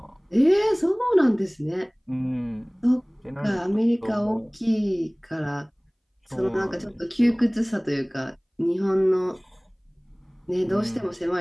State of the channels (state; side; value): identical; both; correlation 1.00